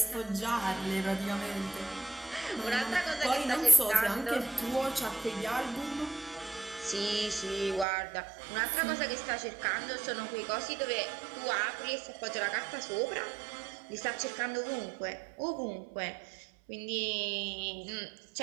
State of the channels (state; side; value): drops out; left; at 7.9 s